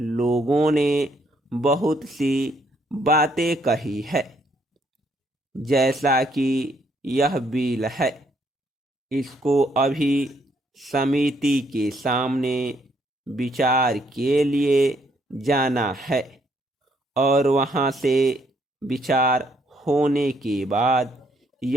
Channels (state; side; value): normal; both; correlation 0.70